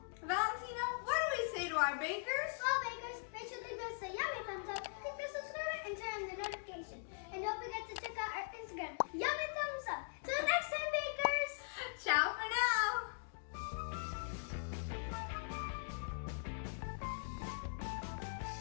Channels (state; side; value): silent; right; digital silence